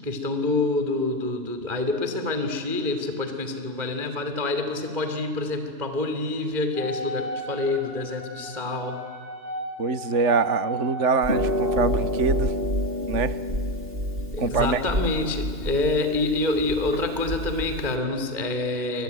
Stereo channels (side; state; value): left; late; 2.8 ms